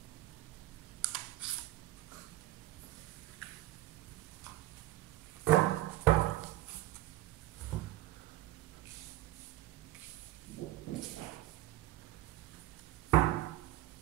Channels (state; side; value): quieter; left; 15.3 dB